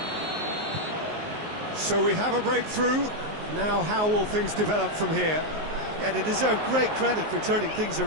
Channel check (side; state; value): left; late; 19 ms